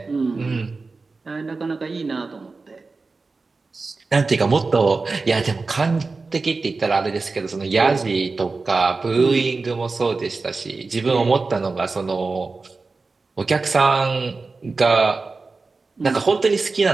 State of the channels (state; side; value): quieter; left; 3.9 dB